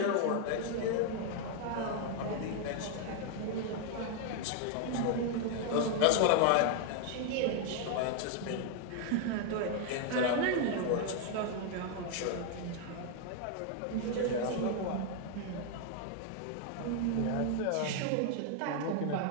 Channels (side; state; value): both; different; correlation 0.00